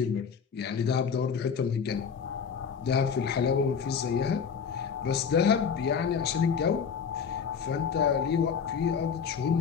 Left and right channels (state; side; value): quieter; right; 6.5 dB